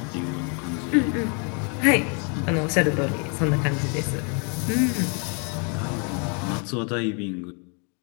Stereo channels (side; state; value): right; quieter; 37.4 dB